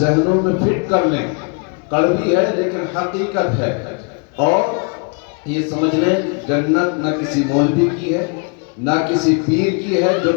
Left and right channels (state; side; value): quieter; right; 35.3 dB